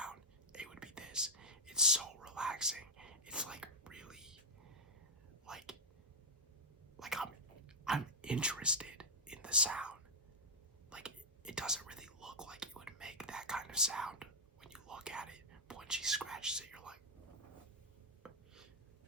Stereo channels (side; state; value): both; normal; correlation -0.02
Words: it would be this. It's so relaxing. It's like really like I'm interested in the sound. Like it doesn't really look like it would make that kind of sound when you look at it, but when she scratches it, you're like,